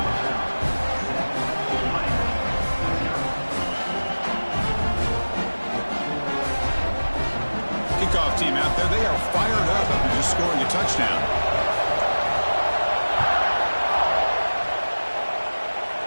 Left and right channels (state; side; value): inverted; both; correlation -1.00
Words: Kickoff team out there, they are fired up after just scoring a touchdown.